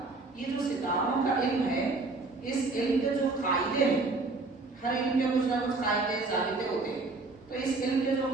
یہ جو ستاروں کا علم ہے، اس علم کے جو قاعدے ہیں، ہر علم کے کچھ نہ کچھ قاعدے ضابطے ہوتے ہیں، تو اس علم کے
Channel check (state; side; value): quieter; left; 3.5 dB